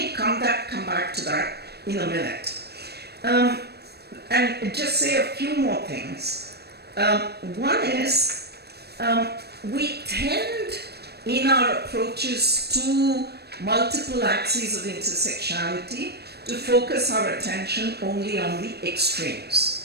come back to that in a minute. And just say a few more things. One is, we tend in our approaches to multiple axes of intersectionality to focus our attention only on the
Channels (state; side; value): late; left; 0.47 ms